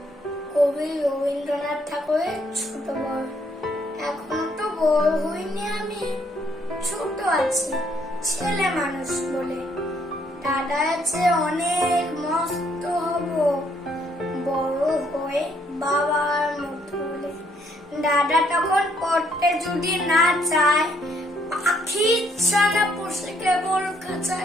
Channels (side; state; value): both; normal; correlation 0.69